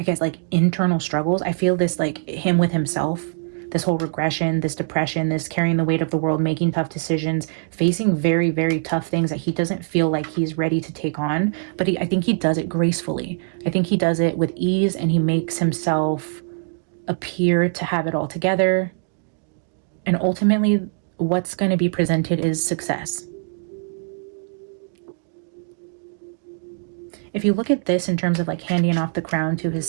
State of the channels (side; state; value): left; silent; digital silence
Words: guess like internal struggles. I feel this like him with himself, this whole regression, this depression, this carrying the weight of the world, making tough decisions, facing very, very tough things that he doesn't feel like he's ready to take on. But I think he does it gracefully. I think he does it with ease, and he makes himself appear to have it all together. And ultimately, what's going to be presented is success. If you look at this in terms of like handing off the crown to